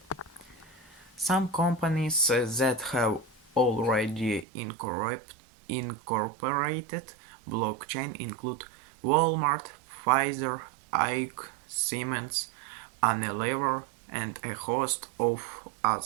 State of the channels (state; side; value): drops out; left; at 4.5 s